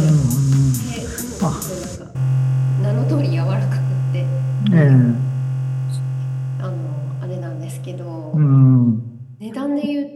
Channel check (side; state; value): both; identical; correlation 1.00